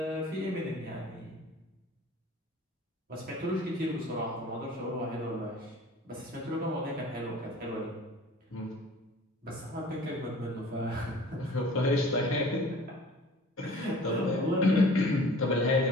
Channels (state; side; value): normal; both; correlation 0.46